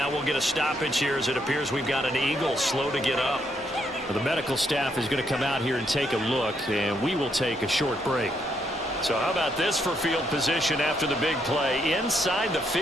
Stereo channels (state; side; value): noise; left; hum, 26 dB below the sound